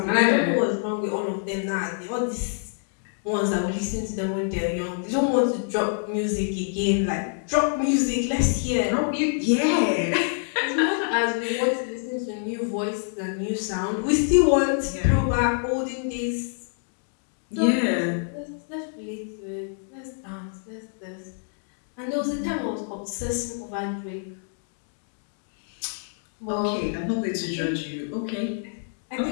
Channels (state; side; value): silent; right; digital silence